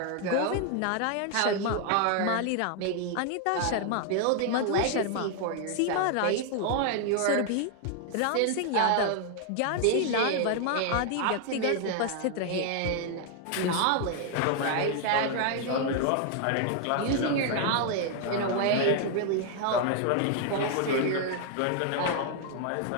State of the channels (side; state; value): both; different; correlation 0.00